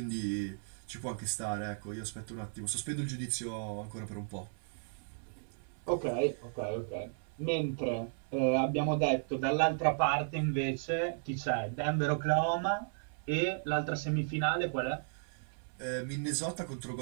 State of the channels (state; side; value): silent; left; 55 dB below the other